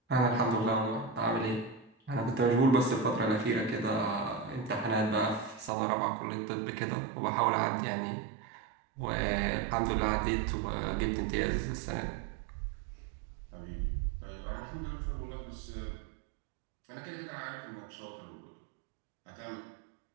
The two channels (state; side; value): drops out; left; at 5.7 s